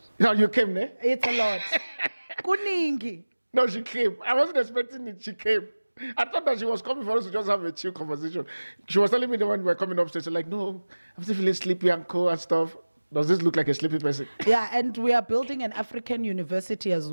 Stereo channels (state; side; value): inverted; both; correlation -1.00